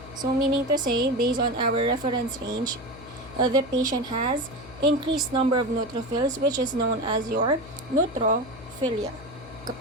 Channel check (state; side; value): noise; left; hum, 18 dB below the sound